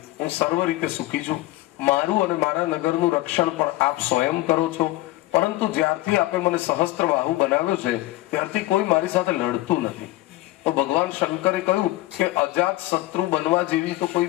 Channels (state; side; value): quieter; right; 18.0 dB